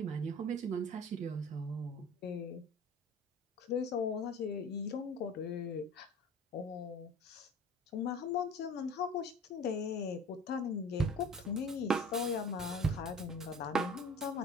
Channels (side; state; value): both; normal; correlation 0.42